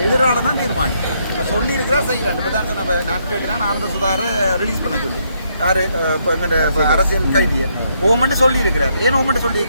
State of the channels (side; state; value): both; inverted; correlation -0.75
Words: எதிரால தான் தீர்மானம். இப்போ சொல்லியிருக்கிறா செய்யறான். இப்போ தான் சொன்ன நான் கேட்டேன்னா ஆனந்த சுதாரை ரிலீஸ் பண்ண சொல்லி யாரு இப்போ எங்கள் அரசியல் கைதியை ஓமெண்ட் சொல்லியிருக்கிறார். ஏன் ஓமெண்ட்